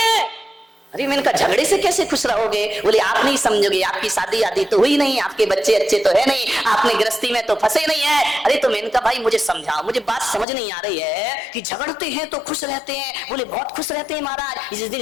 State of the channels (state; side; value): drops out; right; at 10.5 s